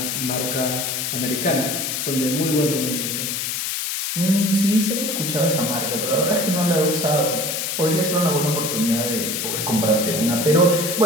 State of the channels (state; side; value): noise; left; hiss, 2 dB below the sound